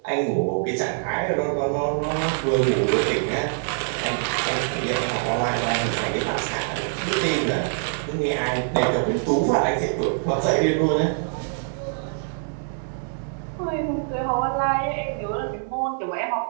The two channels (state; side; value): silent; left; digital silence